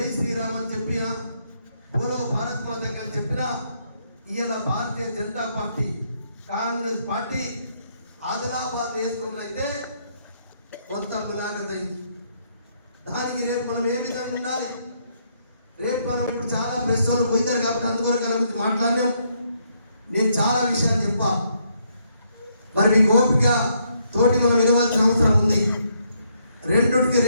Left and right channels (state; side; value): inverted; both; correlation -0.73